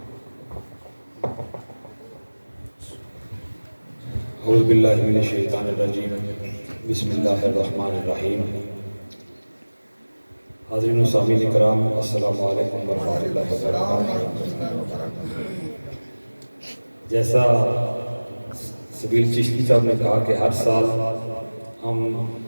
اعوذ باللہ من الشیطان الرجیم، بسم اللہ الرحمن الرحیم۔ حاضرین و سامعین کرام، السلام علیکم ورحمۃ اللہ وبرکاتہ۔ جیسا سبیل چشتی صاحب نے کہا کہ ہر سال ہم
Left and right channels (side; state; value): both; inverted; correlation -1.00